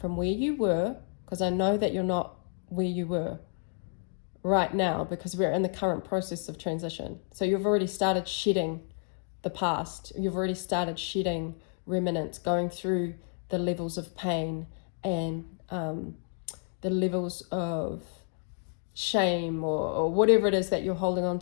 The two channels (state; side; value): silent; right; 58 dB below the other